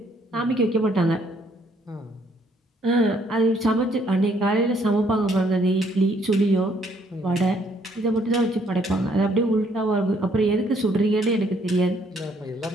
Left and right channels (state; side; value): normal; both; correlation 0.67